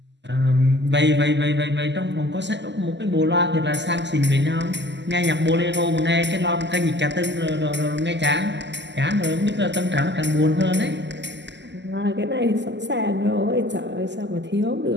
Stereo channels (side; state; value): left; late; 0.51 ms